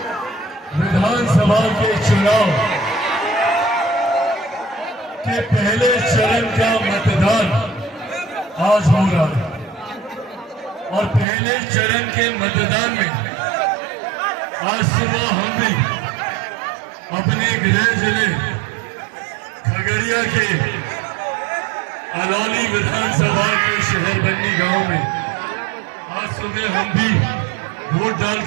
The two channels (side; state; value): left; drops out; at 11.2 s